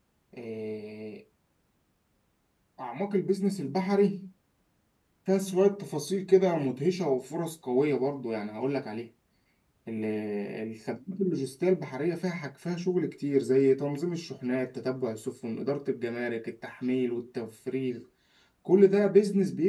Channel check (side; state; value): both; identical; correlation 1.00